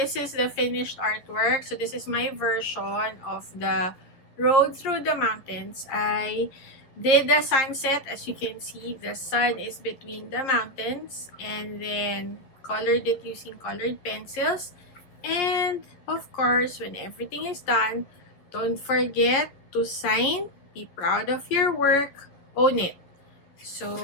is the finished artwork. So this is my version of the road through the mountains. I did the sunset. As you can see, the sun is between the mountains, and then colored it using colored pencils. And of course, when everything is done, don't forget to sign, be proud of your work, own it.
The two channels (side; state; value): right; late; 11 ms